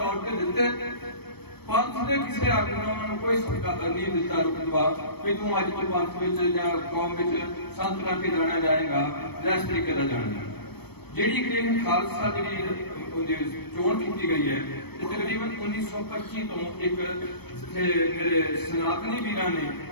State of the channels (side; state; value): right; late; 0.97 ms